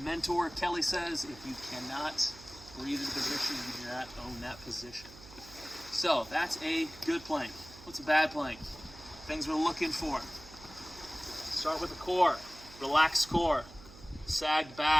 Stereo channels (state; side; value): noise; right; hum, 19 dB below the sound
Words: mentor Kelly says, if you cannot breathe in position, you do not own that position. So that's a good plank. What's a bad plank? Things we're looking for. Start with the core. Relaxed core. Sagged